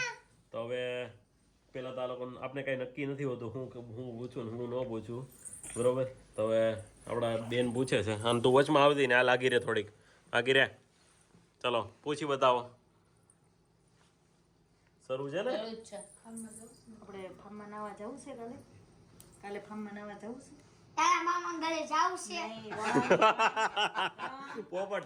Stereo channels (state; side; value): identical; both; correlation 1.00